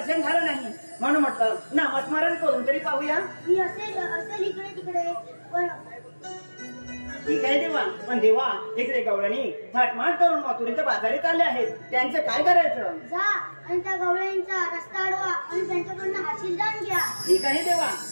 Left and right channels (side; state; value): both; inverted; correlation -1.00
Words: झालं नाही, म्हणून म्हटलं नामस्मरण करून तरी पाहूया. मी असेल इकडे तिकडे, पण ठीक आहे देवा, पण देवा इकडे गवळणी थाटमाट करून मथुरेच्या बाजारीत आले आहेत, त्यांचं काय करायचं? जा आणि त्या गवळ्यांचा रस्ता अडवा आणि त्यांच्याकडनं आशीर्वाद घ्या. ठीक आहे देवा,